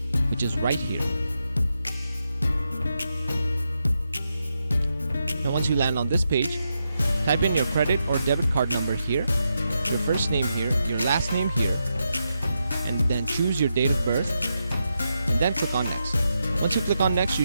which is right here. Now, once you land on this page, type in your credit or debit card number here, your first name here, your last name here, and then choose your date of birth, and then click on next. Once you click on next, you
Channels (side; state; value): both; inverted; correlation -0.85